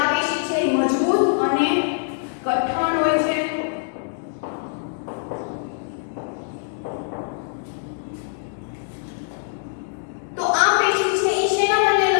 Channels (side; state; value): right; silent; digital silence